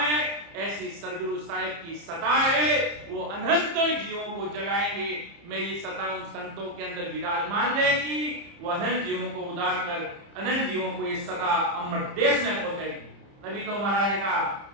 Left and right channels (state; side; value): late; left; 30 ms